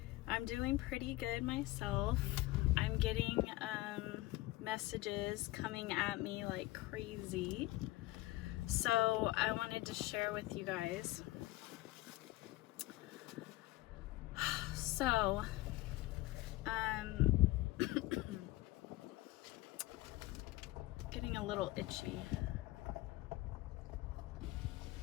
I'm doing pretty good myself. I'm getting messages coming at me like crazy, so I wanted to share with you guys. So getting a little itchy.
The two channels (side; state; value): right; quieter; 18.7 dB